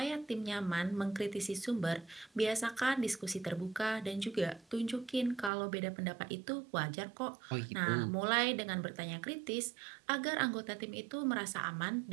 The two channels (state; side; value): drops out; left; at 5.5 s